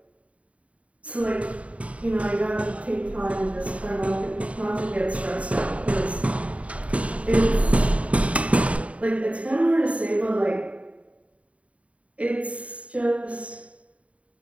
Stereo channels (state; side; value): late; left; 0.065 ms